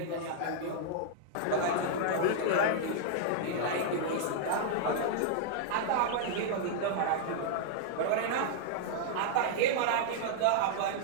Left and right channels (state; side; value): different; both; correlation -0.01